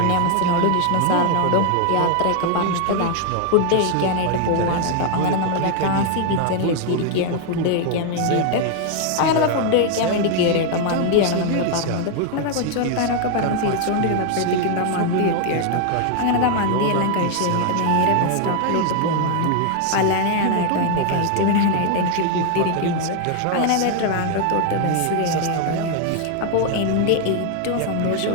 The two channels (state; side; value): different; both; correlation 0.00